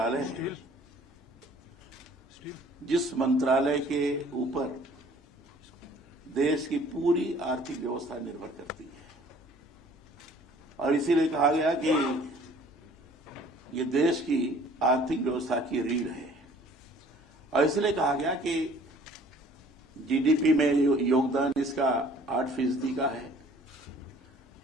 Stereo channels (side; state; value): both; normal; correlation 0.54